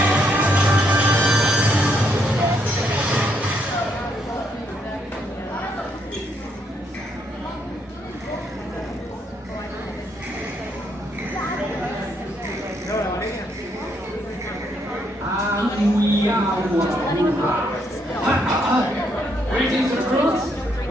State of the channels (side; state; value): both; normal; correlation 0.74